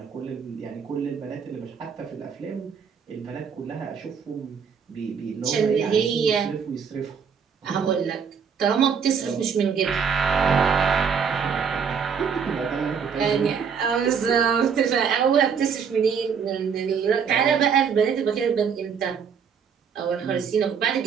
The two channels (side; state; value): left; quieter; 6.7 dB